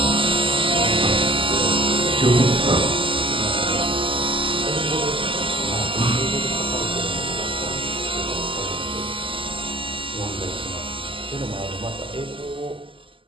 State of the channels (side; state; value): left; late; 0.25 ms